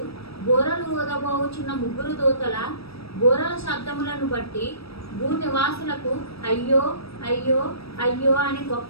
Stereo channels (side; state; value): right; late; 0.77 ms